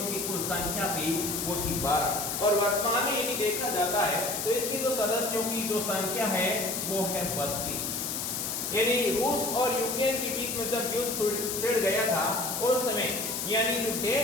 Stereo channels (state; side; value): noise; left; hiss, 3 dB below the sound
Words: कुल संख्या थी वो थी 12, और वर्तमान में यदि देखा जाता है तो इसके जो सदस्यों की जो संख्या है वो है 32। यानी रूस और यूक्रेन के बीच में जब युद्ध छिड़ गया था उस समय यानी जो